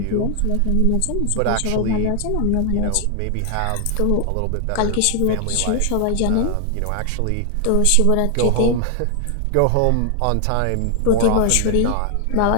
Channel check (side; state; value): both; different; correlation 0.00